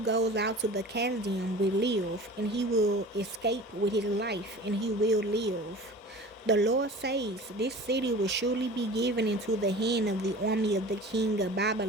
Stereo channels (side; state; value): both; normal; correlation 0.39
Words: goes out to the Chaldean will live, and he will escape with his life, and he will live. The Lord says, This city will surely be given into the hand of the army of the king of